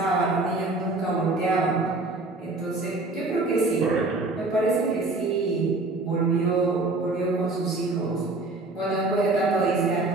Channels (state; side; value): quieter; left; 3.2 dB